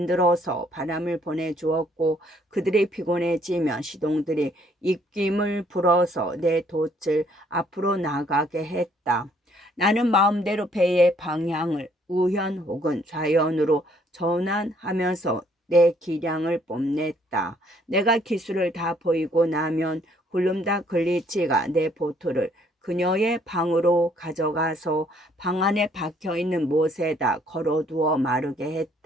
바람을 보내주었고 그들이 피곤해지면 시동들이 입김을 불어서 내 돛을 앞으로 나가게 했다. 나는 마음대로 배의 방향을 우현 혹은 좌현으로 전환하면서 내 기량을 뽐냈다. 내가 기술을 다 보이고 나면 굴름다 글리치가 내 보트를 그녀의 방으로 가져가서 방 안에 박혀있는 못에다 걸어두어 마르게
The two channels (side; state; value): both; normal; correlation 0.64